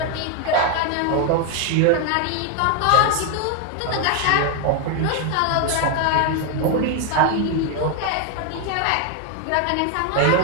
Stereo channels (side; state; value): both; different; correlation 0.01